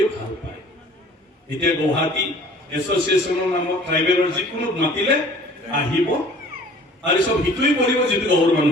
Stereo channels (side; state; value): both; normal; correlation 0.50